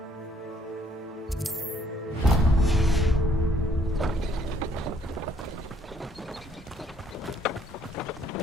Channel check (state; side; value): normal; both; correlation 0.65